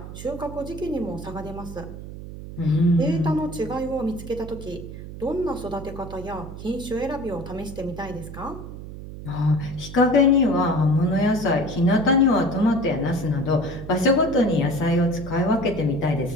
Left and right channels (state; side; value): noise; right; hum, 11 dB below the sound